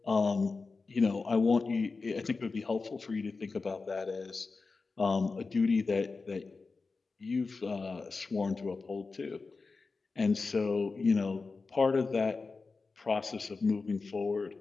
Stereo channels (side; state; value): right; quieter; 4.1 dB